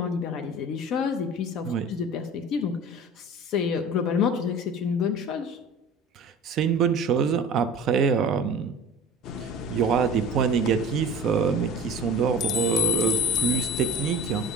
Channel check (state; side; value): normal; both; correlation 0.38